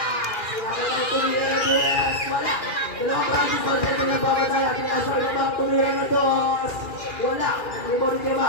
siya natin tumira na dos. Wala. Dalawang practice pa siya pinapapatay. Pinasok na Maki, tumira na dos. Wala. Nag-rebound kay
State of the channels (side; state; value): right; late; 2.4 ms